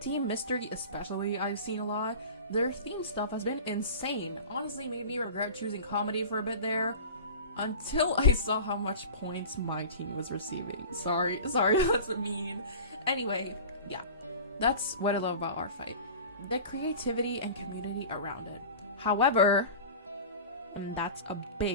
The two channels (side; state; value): both; inverted; correlation -0.36